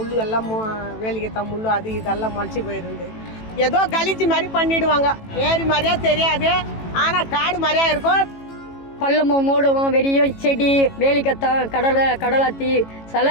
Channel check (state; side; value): late; right; 18 ms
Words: எல்லாம் வேலிக்கத்தான் முள்ளு அது இதெல்லாம் முளைச்சி போயிருந்து. ஏதோ கழிச்சு மாதிரி பண்ணிடுவாங்க. ஏரி மாதிரியா தெரியாது, ஆனால் காடு மாதிரியா இருக்கும். பள்ளமும் மூடவும் வெறிய செடி வேலிக்கத்தான் கடலாத்தி சில